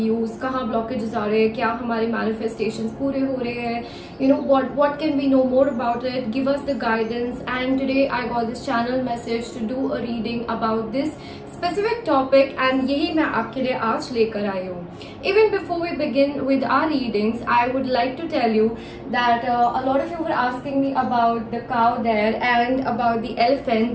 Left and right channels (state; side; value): identical; both; correlation 1.00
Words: use, कहाँ ब्लॉकेजेस आ रहे हैं, क्या हमारे मैनिफेस्टेशंस पूरे हो रहे हैं, you know what can we know more about it, give us the guidance. And today I got this channel message to do a reading about this specific topic and यही मैं आपके लिए आज लेकर आई हूँ. Even before we begin with our readings, I would like to tell you that a lot of you were asking me about the cow there and about the elephant